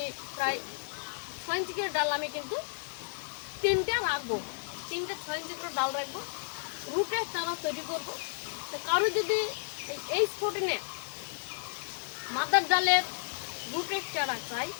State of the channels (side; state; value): right; silent; digital silence